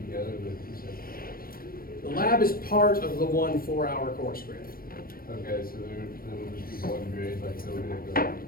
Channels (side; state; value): right; late; 0.43 ms